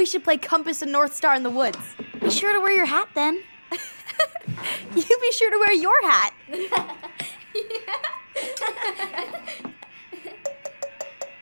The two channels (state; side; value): inverted; both; correlation -1.00